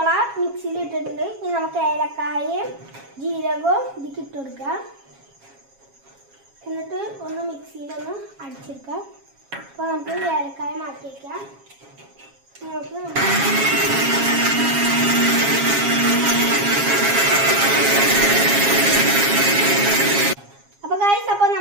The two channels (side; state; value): left; late; 7.3 ms